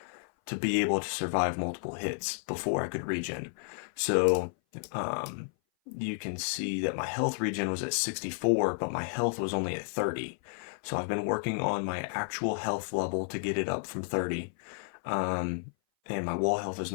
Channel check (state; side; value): silent; right; 56 dB below the other